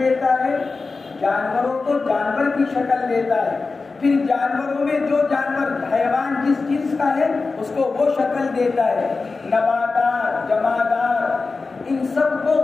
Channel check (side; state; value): right; quieter; 4.0 dB